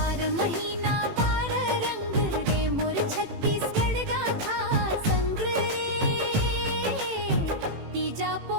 महीना 12 रंग रे मोर छत्तीसगढ़ गाथा संग रे, तीजा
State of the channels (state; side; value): late; left; 18 ms